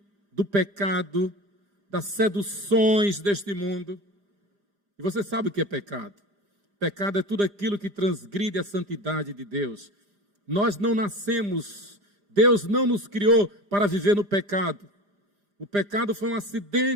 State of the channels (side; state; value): left; late; 5.0 ms